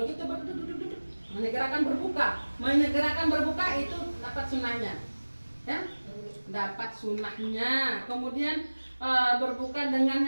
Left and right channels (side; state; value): both; inverted; correlation -1.00